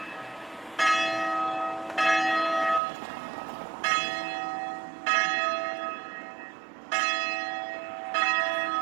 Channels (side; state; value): left; drops out; at 2.8 s